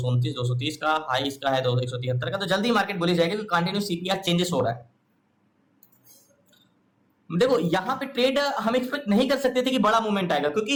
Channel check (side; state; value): both; identical; correlation 1.00